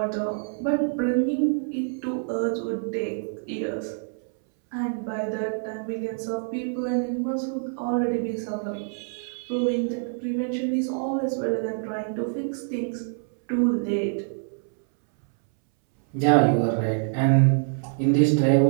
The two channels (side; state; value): left; silent; 61 dB below the other